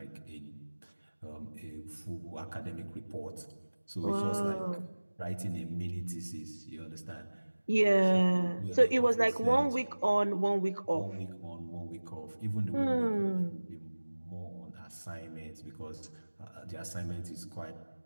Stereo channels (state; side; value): inverted; both; correlation -1.00